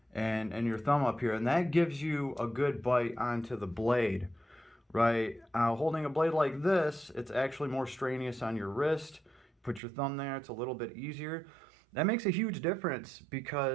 and your thumb up here, and that gives you a good bite onto the blade, right? Holding a blade like this, it's actually more strenuous on your wrist. Put your thumb there, it's a little bit easier. That makes a huge difference,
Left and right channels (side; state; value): left; drops out; at 9.8 s